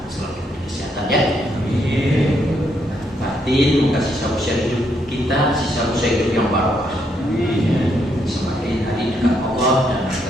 selalu diberi kesehatan ya. Amin. Batin, moga sisa usia hidup kita, sisa usia hidup yang barokah. Amin. Semakin hari dekat Allah dan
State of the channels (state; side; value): normal; both; correlation 0.75